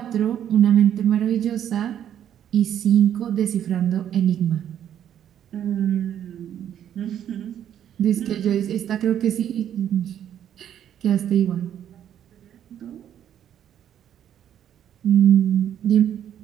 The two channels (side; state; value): left; quieter; 10.1 dB